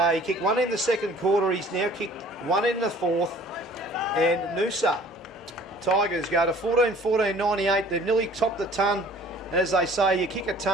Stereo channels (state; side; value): normal; both; correlation 0.52